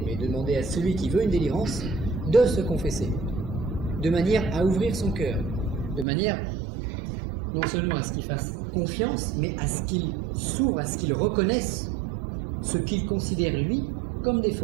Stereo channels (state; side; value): drops out; left; at 6.1 s